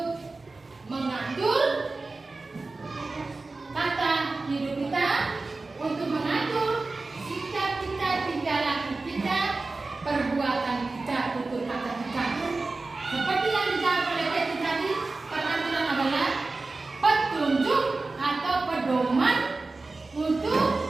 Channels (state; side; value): quieter; left; 3.5 dB